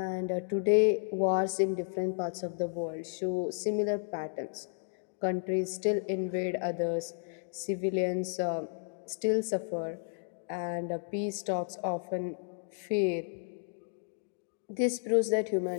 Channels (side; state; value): right; silent; digital silence